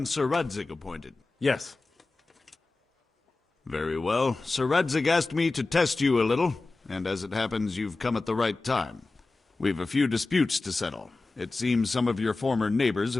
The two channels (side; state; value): right; quieter; 3.4 dB